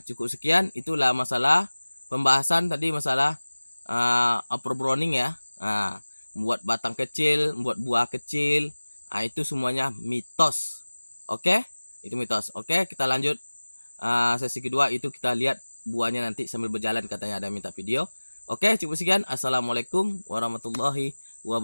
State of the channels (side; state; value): both; inverted; correlation -1.00